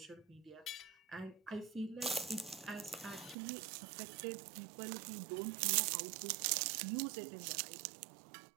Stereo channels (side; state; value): left; drops out; at 3.4 s